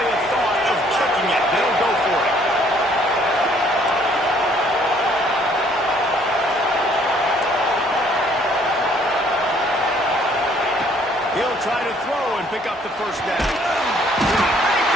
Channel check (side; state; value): both; normal; correlation 0.62